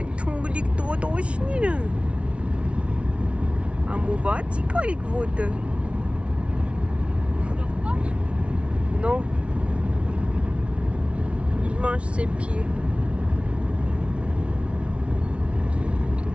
են թունգլիկ տոտոշնիրը, ամուվացի կարիք ոտը, նո, իմանչ սեպի,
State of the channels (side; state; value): left; late; 0.061 ms